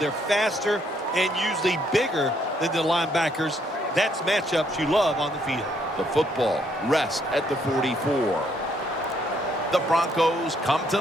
faster and usually bigger than the linebackers. That's matchups you love on the field. The football rests at the 44. The Broncos come to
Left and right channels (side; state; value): both; normal; correlation 0.70